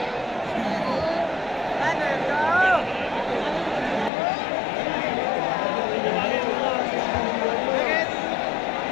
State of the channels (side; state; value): right; drops out; at 4.1 s